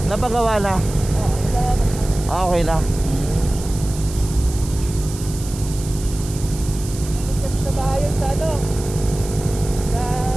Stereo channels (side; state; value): right; noise; hiss, 13 dB below the sound